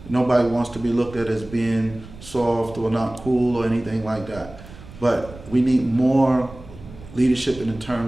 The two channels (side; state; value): right; noise; rumble, 17 dB below the sound